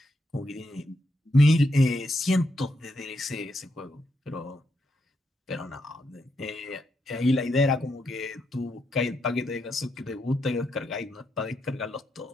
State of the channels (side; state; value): both; normal; correlation 0.81